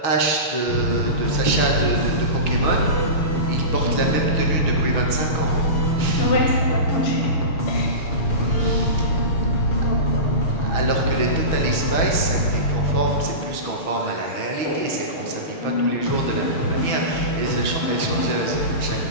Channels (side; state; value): right; late; 6.3 ms